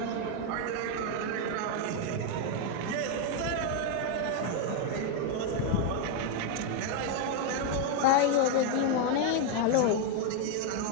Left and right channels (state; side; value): different; both; correlation 0.01